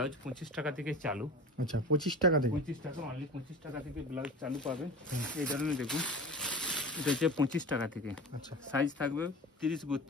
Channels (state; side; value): normal; both; correlation 0.34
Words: 25 টাকা থেকে চালু। আচ্ছা 25 টাকা থেকে? 25 টাকা, অনলি 25 টাকা থেকে ব্লাউজ চালু পাবেন। এই ধরনের দেখুন, এটা হচ্ছে 25 টাকা থেকে। আচ্ছা সাইজ থাকবে 30,